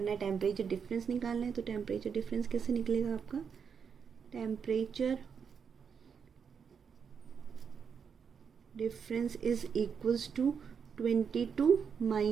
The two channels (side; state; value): left; quieter; 6.6 dB